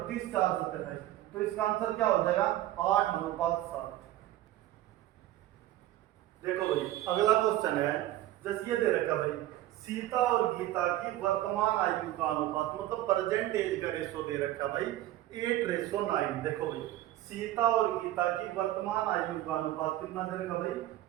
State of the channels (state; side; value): quieter; left; 14.6 dB